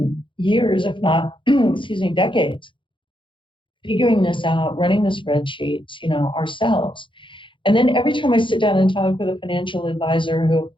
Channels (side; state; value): right; late; 0.24 ms